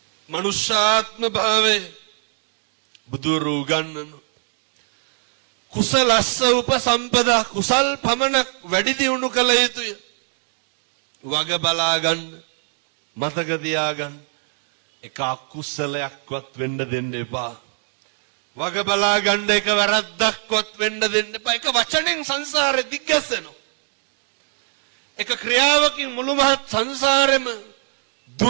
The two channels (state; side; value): silent; left; 56 dB below the other